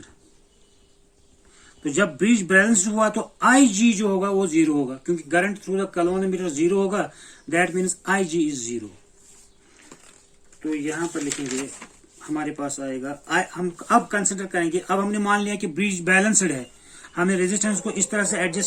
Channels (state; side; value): identical; both; correlation 1.00